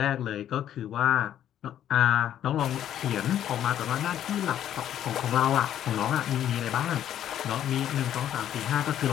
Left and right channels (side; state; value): right; quieter; 10.9 dB